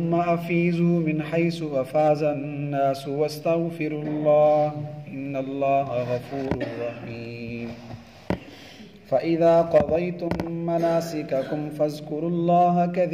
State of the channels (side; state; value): both; identical; correlation 1.00